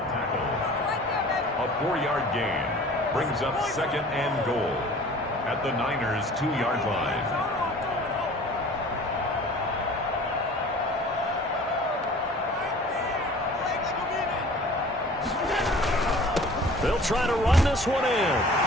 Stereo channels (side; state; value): both; normal; correlation 0.46